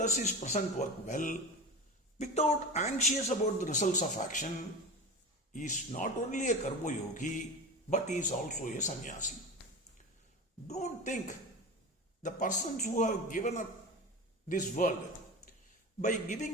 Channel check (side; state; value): both; normal; correlation 0.28